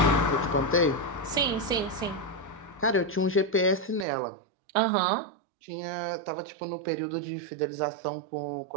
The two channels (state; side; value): drops out; left; at 4.0 s